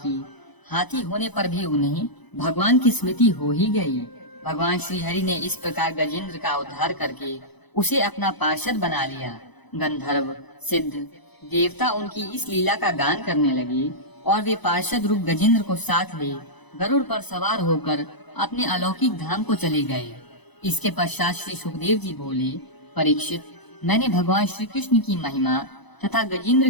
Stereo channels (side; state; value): right; late; 1.0 ms